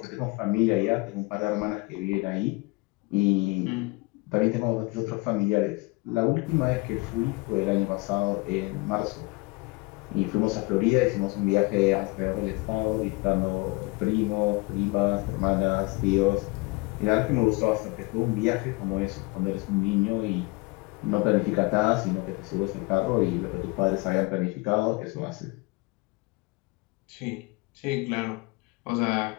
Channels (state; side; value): quieter; right; 24.8 dB